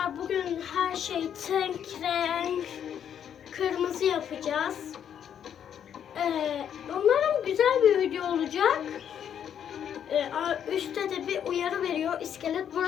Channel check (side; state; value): right; quieter; 9.0 dB